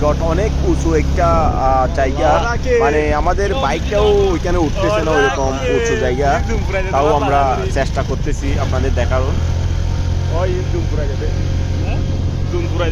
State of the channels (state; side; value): identical; both; correlation 1.00